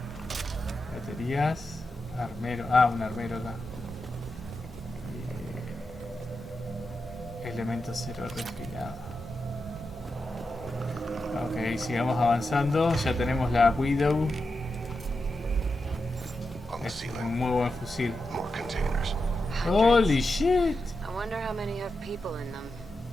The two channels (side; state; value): both; normal; correlation 0.89